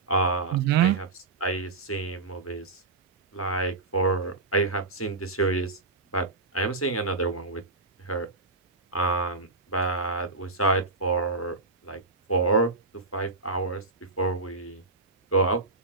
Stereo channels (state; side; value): quieter; left; 3.5 dB